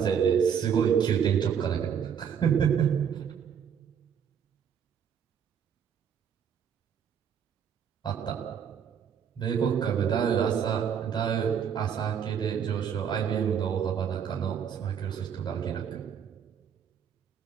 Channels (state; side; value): quieter; left; 7.9 dB